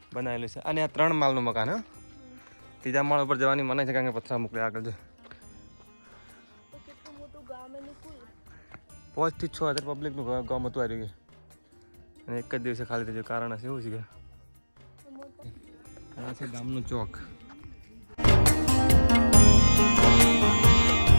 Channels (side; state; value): both; inverted; correlation -1.00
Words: બનાવેલું છે. અને આ 3 માળનું મકાન. હા, 3જા માળ ઉપર જવાની મને છે, કારણ કે પથરા મોકલે આગળ છે. તો કેટલું મોટું ગામ એનું કુલ. 5 થી 6 હજાર પબ્લિકનું ગામ હતું આવી ગયું. અને એક જ દિવસે ખાલી થઈ ગયું. કારણ હશે એવું છે કે આ છે ગામનું ચોક.